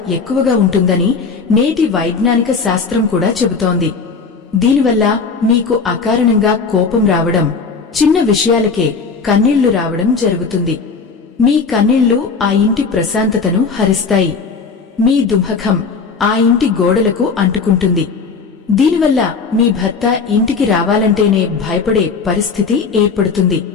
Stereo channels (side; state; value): right; quieter; 5.0 dB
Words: ఎక్కువగా ఉంటుందని నేటి వైజ్ఞానిక శాస్త్రం కూడా చెబుతోంది. దీనివల్ల మీకు అకారణంగా కోపం రావడం, చిన్న విషయాలకే కన్నీళ్లు రావడం జరుగుతుంది. మీ కన్నీళ్లు ఆ ఇంటి ప్రశాంతతను హరిస్తాయి. మీ దుఃఖం ఆ ఇంటి గోడలకు అంటుకుంటుంది. దీనివల్ల మీ భర్త ఇంటికి రావాలంటేనే భయపడే పరిస్థితి ఏర్పడుతుంది.